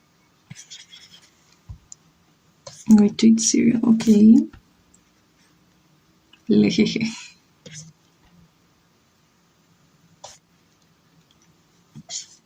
going to eat cereal, okay. Lejeje.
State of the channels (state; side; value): identical; both; correlation 1.00